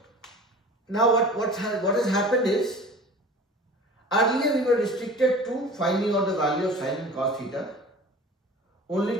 now what has happened is, earlier we were restricted to finding out the value of sine and cos theta only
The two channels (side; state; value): both; normal; correlation 0.41